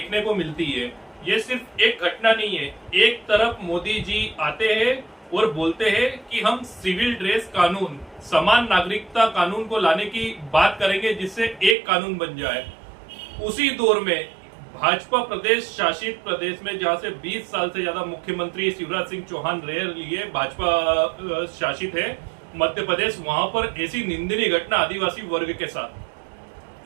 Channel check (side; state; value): left; drops out; at 11.8 s